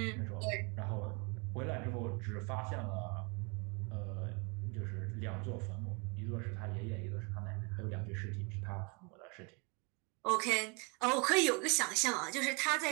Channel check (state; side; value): quieter; left; 31.8 dB